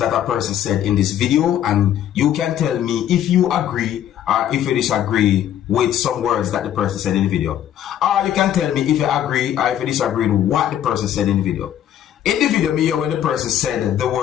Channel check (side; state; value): right; quieter; 10.8 dB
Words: a person said in this video. And you can tell me if you agree or if you disagree with some words that the person said in the video. Or you can tell me if you agree or if you disagree with what the person said in the video. In the video, me hear when the person said the